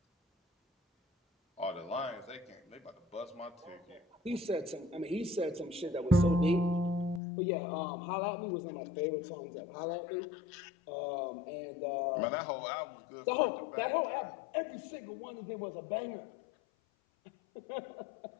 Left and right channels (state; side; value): drops out; right; at 7.2 s